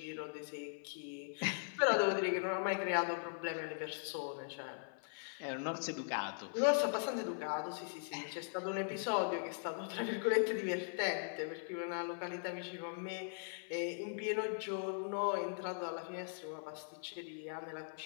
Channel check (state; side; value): silent; right; 51 dB below the other